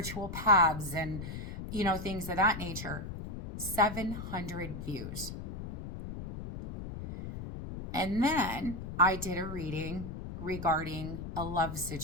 paths and, things of that nature. 700 views. And then I did a reading regarding a love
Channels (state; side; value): noise; left; rumble, 8 dB below the sound